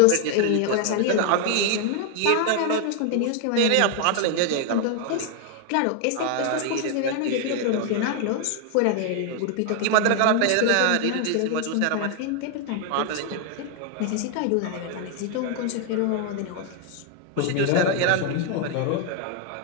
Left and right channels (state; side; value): different; both; correlation 0.00